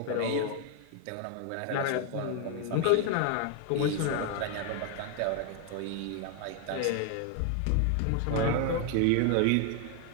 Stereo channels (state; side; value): different; both; correlation 0.00